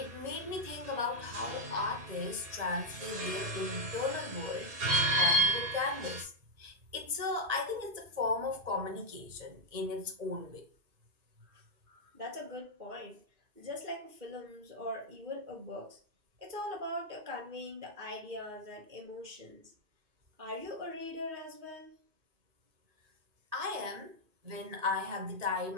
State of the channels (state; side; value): late; left; 2.5 ms